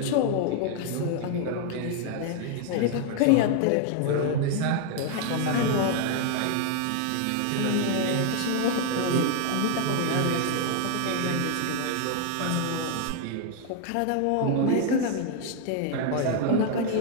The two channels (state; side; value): different; both; correlation 0.00